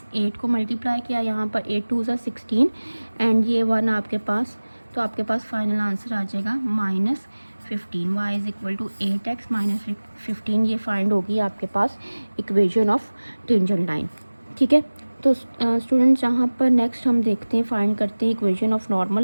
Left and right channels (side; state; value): both; inverted; correlation -1.00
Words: 8 को मल्टीप्लाई किया, यहाँ पर 8 2 ज़ा 16 एंड ये 1 आपके पास, तो आपके पास फाइनल आंसर आ जाएगा minus 15। y is equal to 8x minus 15, ये फाइंड होगी आपके पास इक्वेशन ऑफ टेंजेंट लाइन, ठीक है। तो स्टूडेंट्स यहाँ पर नेक्स्ट हम देखते हैं, फाइंड करते हैं इक्वेशन ऑफ नॉर्मल